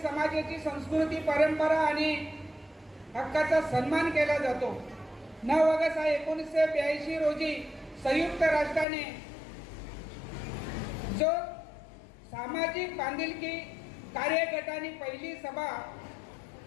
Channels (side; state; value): right; drops out; at 8.8 s